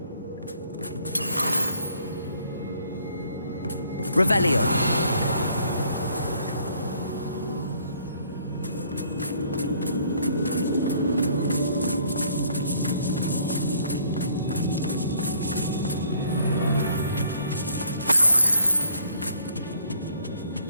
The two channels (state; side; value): inverted; both; correlation -0.62